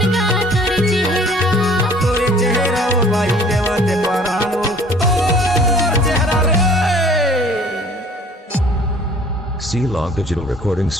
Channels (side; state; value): both; normal; correlation 0.52